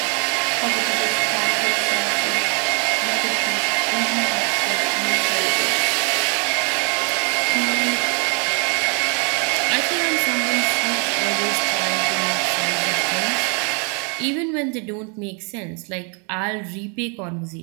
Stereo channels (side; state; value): left; quieter; 37.2 dB